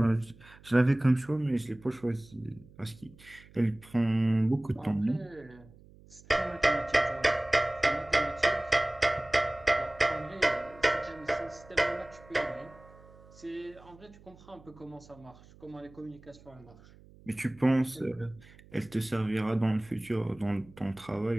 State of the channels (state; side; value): noise; right; hum, 24 dB below the sound